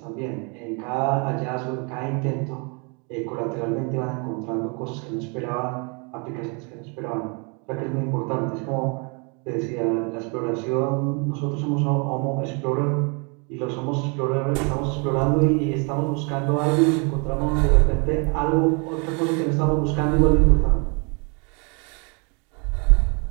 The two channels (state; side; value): quieter; left; 33.9 dB